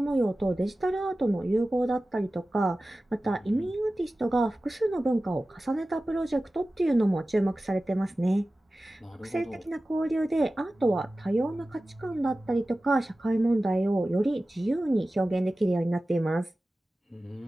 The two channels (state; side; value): normal; both; correlation 0.96